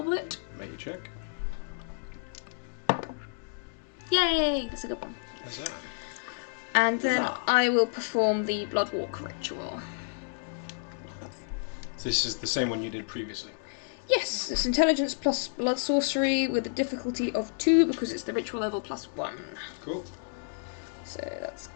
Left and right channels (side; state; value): right; silent; digital silence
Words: Make a check. Yay! That's a good one. Huzzah. And then Huzzah. I will perform the blood walk ritual. So this is the same one you did previously. Yes, it's intelligence plus blood sorcery with a difficulty of 2 because it's the ritual level plus 1. Cool. So that's